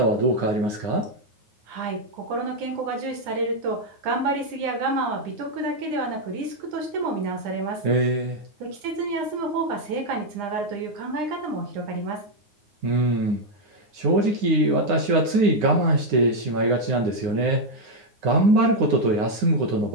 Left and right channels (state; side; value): late; left; 9.7 ms